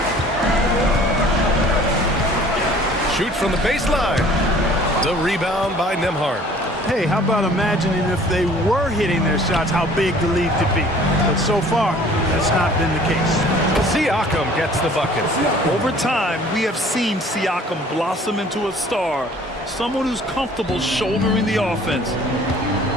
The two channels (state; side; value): normal; both; correlation 0.52